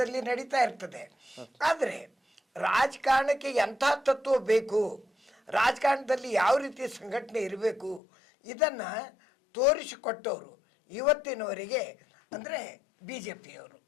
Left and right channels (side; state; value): right; drops out; at 8.0 s